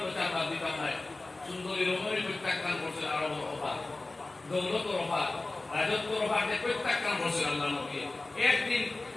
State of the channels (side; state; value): right; quieter; 3.1 dB